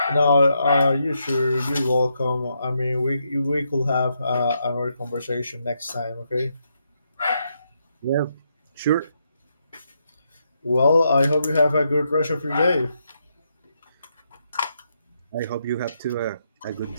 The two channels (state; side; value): inverted; both; correlation -0.80